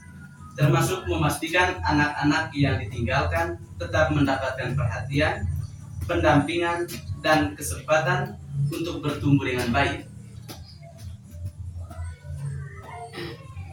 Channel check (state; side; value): identical; both; correlation 1.00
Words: termasuk memastikan anak-anak yang ditinggalkan tetap mendapatkan perhatian, pendampingan, dan kesempatan untuk bertumbuh dengan baik.